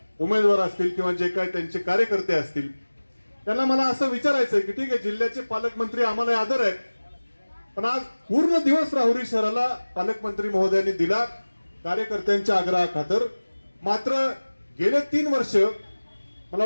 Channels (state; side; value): inverted; both; correlation -1.00